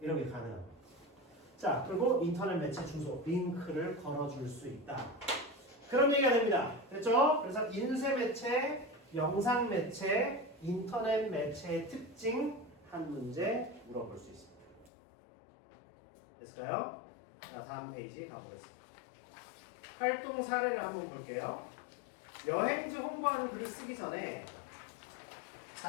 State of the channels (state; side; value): drops out; right; at 14.9 s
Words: 이런 게 가능합니다. 자, 그리고 인터넷 매체 주소, 링크를 걸어줄 수 있다. 그런 얘기가 됩니다. 됐죠? 그래서 인쇄 매체, 영상 매체, 인터넷 매체의 특징 한 문제 물어볼 수 있습니다. 됐을까요? 자, 다음 페이지 가보겠습니다. 활동 사례를 한번 볼게요. 여행지 홍보하는 글을 쓰기 전에